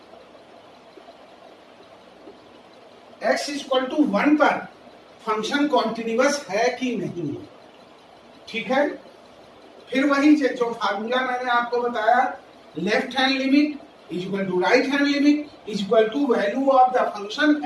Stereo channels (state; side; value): identical; both; correlation 1.00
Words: x is equal to 1 पर फंक्शन कॉन्टिन्यूअस है कि नहीं है। ठीक है, फिर वही जो फार्मूला मैंने आपको बताया, left hand limit is equal to right hand limit is equal to value of the function